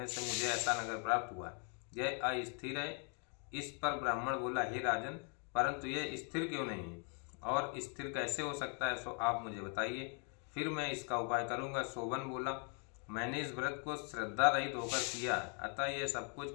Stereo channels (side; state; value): right; quieter; 39.4 dB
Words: से मुझे ऐसा नगर प्राप्त हुआ। यह अस्थिर है। इस पर ब्राह्मण बोला, हे राजन, परंतु यह स्थिर क्यों नहीं है और स्थिर कैसे हो सकता है, सो आप मुझे बताइए, फिर मैं इसका उपाय करूंगा। शोभन बोला, मैंने इस व्रत को श्रद्धा रहित होकर किया है, अतः यह सब